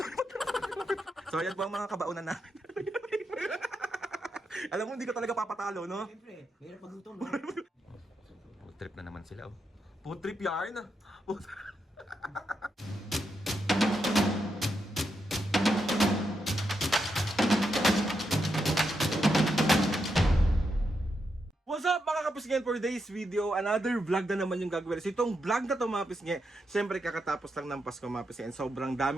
So ayan po ang mga kabaunan namin. Alam mo, hindi ka talaga papatalo, no? Siyempre, mahirap magluto, no? Food trip na naman sila, oh. Food trip yarn. What's up mga kapisngen, for today's video, another vlog na naman yung gagawin. So itong vlog na to mga kapisngen, syempre kakatapos lang ng Pasko mga kapisngen. Sobrang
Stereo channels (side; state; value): both; normal; correlation 0.84